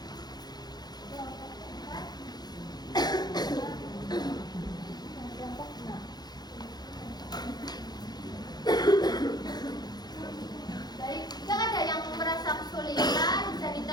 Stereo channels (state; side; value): late; right; 0.20 ms